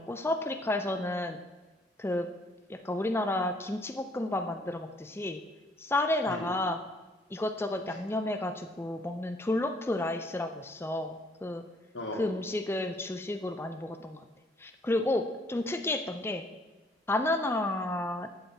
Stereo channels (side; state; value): both; normal; correlation 0.63